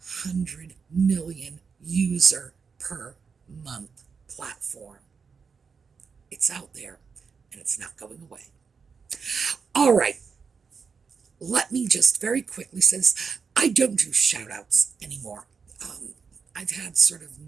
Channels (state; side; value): quieter; left; 5.6 dB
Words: 100 million user per month platform. It's out there, and it's not going away. All right. Let me just very quickly say this. I don't do shout outs anymore. I've had sort of